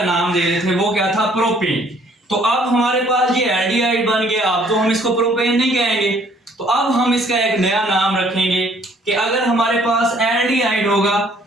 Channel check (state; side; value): normal; both; correlation 0.61